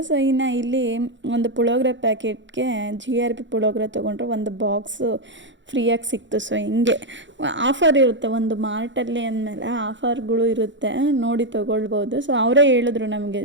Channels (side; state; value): left; late; 0.54 ms